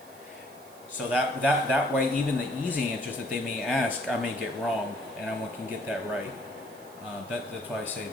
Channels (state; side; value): noise; right; hiss, 23 dB below the sound